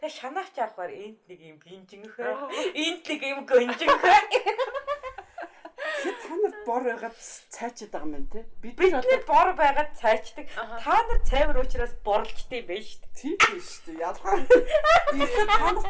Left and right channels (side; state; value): both; identical; correlation 1.00